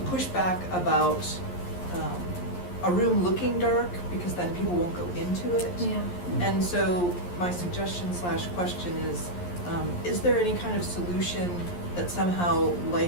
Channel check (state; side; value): late; right; 11 ms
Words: pushback about a room looking dark because then people won't go into it. Yeah. And so my suggestion / question is there any kind of solution that somehow